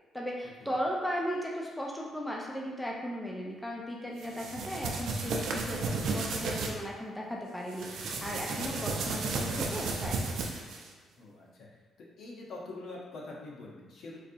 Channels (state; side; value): normal; both; correlation 0.76